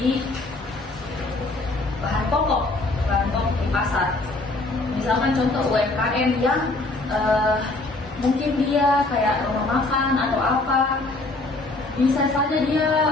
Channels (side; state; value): right; quieter; 3.0 dB